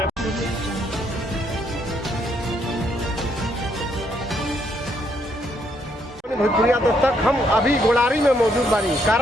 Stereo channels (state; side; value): normal; both; correlation 0.73